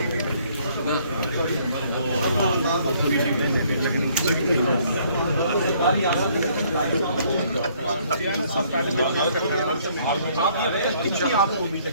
चल आपको उम्मीद है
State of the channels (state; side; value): inverted; both; correlation -0.63